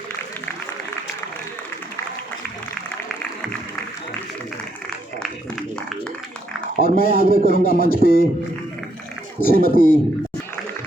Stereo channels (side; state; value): both; normal; correlation 0.74